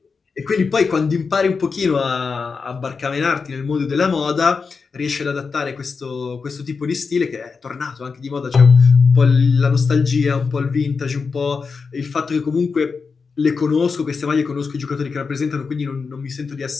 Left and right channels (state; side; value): quieter; right; 5.0 dB